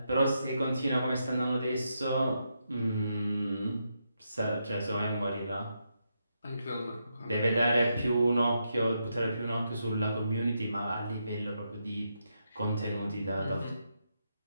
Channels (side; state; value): both; inverted; correlation -0.82